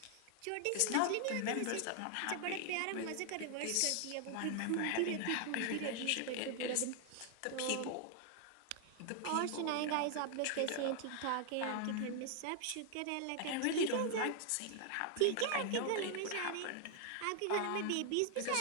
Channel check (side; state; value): both; different; correlation 0.00